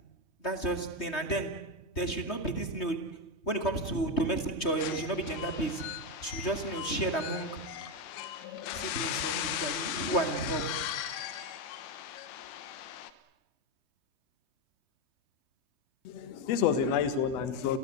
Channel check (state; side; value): late; right; 3.2 ms